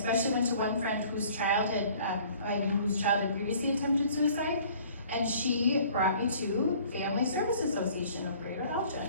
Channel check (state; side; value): inverted; both; correlation -0.53